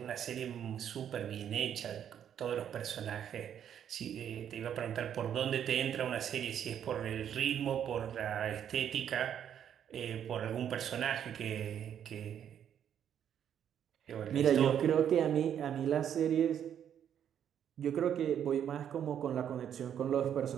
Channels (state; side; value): quieter; left; 9.3 dB